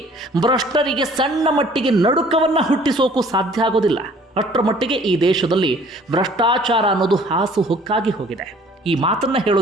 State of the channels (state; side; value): normal; both; correlation 0.54